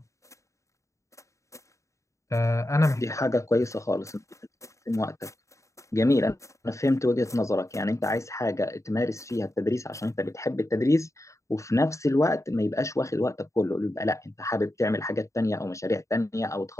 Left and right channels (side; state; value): right; late; 0.15 ms